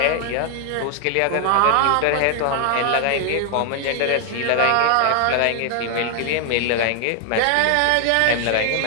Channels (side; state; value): both; different; correlation 0.00